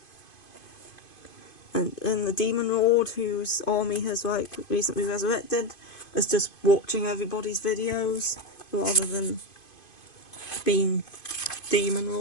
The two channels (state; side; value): late; right; 2.5 ms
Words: And the Demon Lord, whose army has like recently resurrected, is just watching everybody's videos rather than being Demon